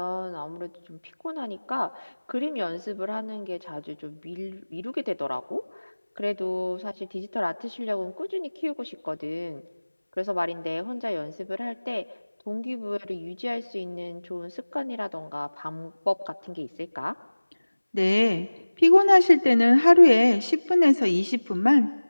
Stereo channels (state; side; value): inverted; both; correlation -1.00